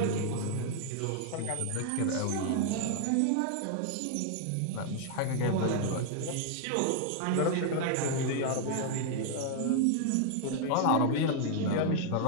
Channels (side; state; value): both; different; correlation 0.00